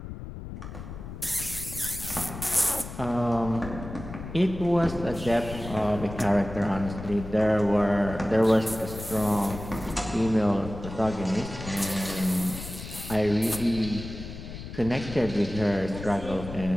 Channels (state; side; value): noise; left; rumble, 11 dB below the sound